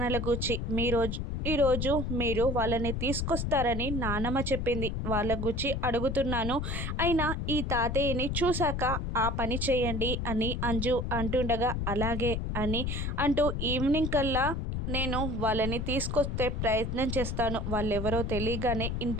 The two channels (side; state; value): left; noise; rumble, 2 dB below the sound